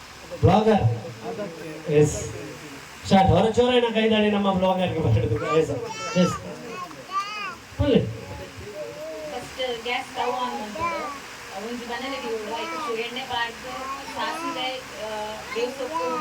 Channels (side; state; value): both; identical; correlation 1.00